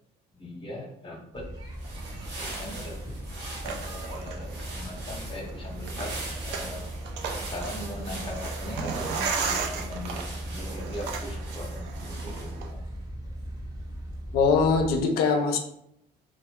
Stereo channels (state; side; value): normal; both; correlation 0.38